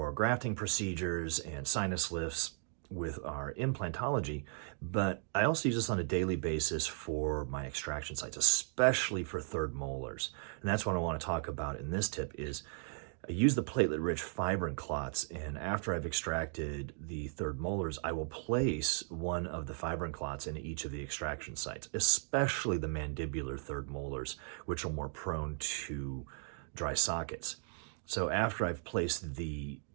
grafting procedures and sinus lifts with our implantology, but I also use this on a daily basis for my extraction sites, especially for third molars. And that's what I want to talk about in this tip is I use the platelet-rich fibrin clots, and after I've extracted the third molars, I will place one of the fibrin clots into each of the extraction sites, especially the mandibular third molars, which are more prone to dry sockets. So after I've placed the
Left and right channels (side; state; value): left; silent; 53 dB below the other